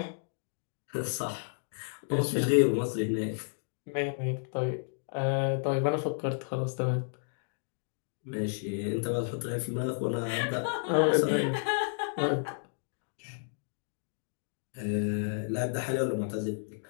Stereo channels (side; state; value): right; silent; digital silence